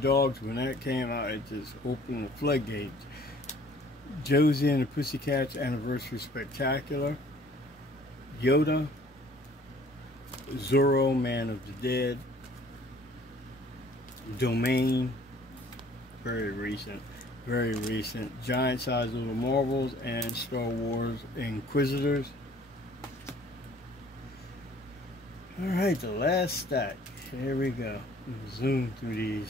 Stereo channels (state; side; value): normal; both; correlation 0.55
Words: when that came out, it just opened the floodgates. Josie and the Pussycats Anniversary Spectacular. Yoda. Zorro, Man of the Dead. Domain. Very recent. Very recent. Giant Size Little Marvels and Star Wars Inquisitors. Alright, the last stack. Here we go. Zoom through